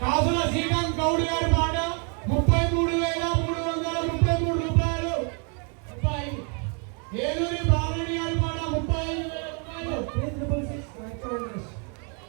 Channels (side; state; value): left; quieter; 38.1 dB